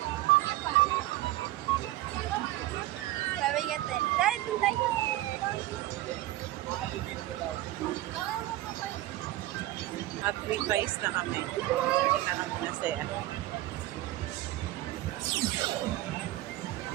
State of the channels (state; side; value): quieter; left; 16.3 dB